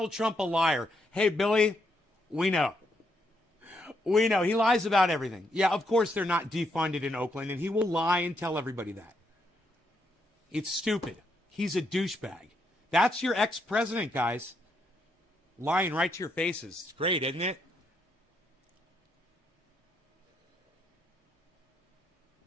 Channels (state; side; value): normal; both; correlation 0.77